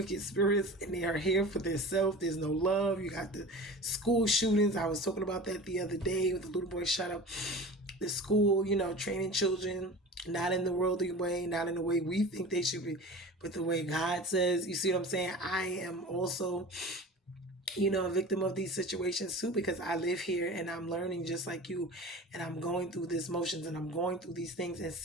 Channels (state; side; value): normal; both; correlation 0.36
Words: spirits, and they are here for themselves. There's no love. You got the school shootings. I was talking about that the other day with the little boy shot up the school, training children, not in the worldly way, not in the way we think they should be, but the way God says. You see what I'm saying? I am also a victim of these situations too, because I live here and I'm learning just like you, and I'm going through these motions and I'm going through these things and